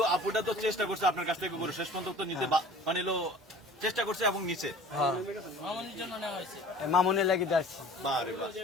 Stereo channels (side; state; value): both; normal; correlation 0.45